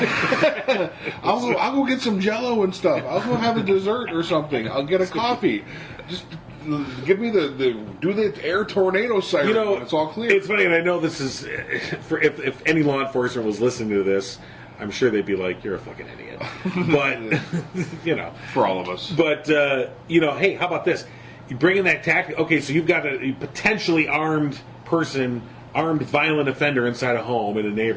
I'll go get some Jello and stuff. I'll go have a dessert or something. I'll get a coffee. Just give me do the air tornado siren. You know, when it's all clear. It's funny, and I know this is for if any law enforcement was listening to this, I'm sure they'd be like, "You're a fucking idiot." But you know, for all of us. But you know, hey, how about this? You bring in that tactic. Okay, so you've got a potentially armed person, armed violent offender inside a home in a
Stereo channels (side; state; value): both; identical; correlation 1.00